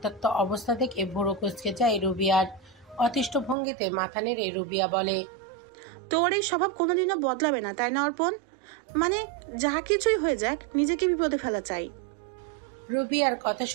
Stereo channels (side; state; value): left; drops out; at 3.6 s